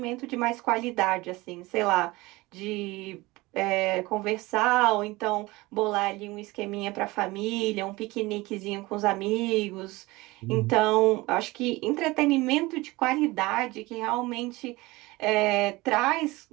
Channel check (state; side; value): quieter; left; 21.4 dB